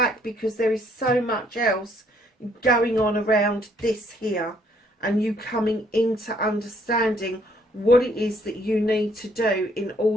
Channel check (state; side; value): normal; both; correlation 0.66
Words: because there is so much else going on around this here, and you coming into understanding what it is that you need to do in